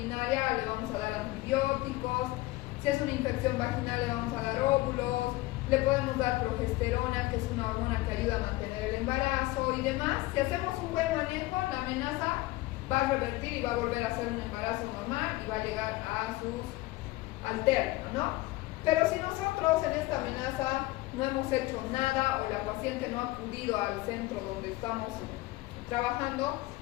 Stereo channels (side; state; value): right; quieter; 19.3 dB